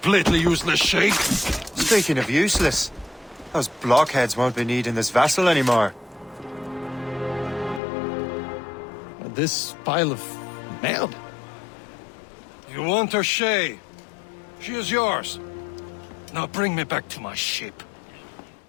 useless, Sheikh. Speaking of useless, those blockheads won't be needing this vessel anymore. This pile of mail. You want her, Shay? She is yours. Now bring me back to my ship.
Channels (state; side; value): drops out; right; at 7.8 s